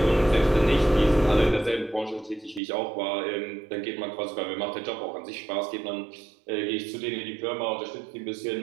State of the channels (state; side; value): drops out; left; at 2.6 s